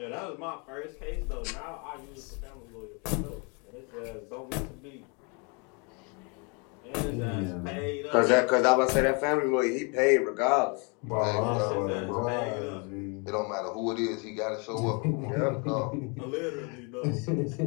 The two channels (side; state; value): right; quieter; 33.5 dB